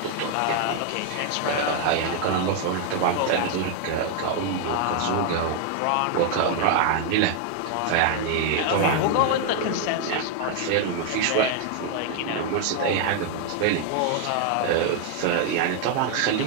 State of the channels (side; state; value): both; different; correlation 0.00